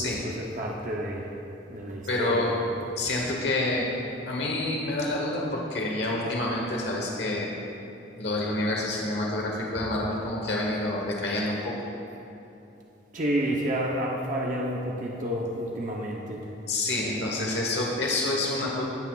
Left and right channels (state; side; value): normal; both; correlation 0.35